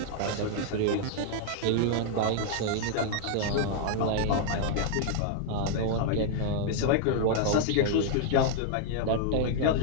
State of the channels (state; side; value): different; both; correlation -0.01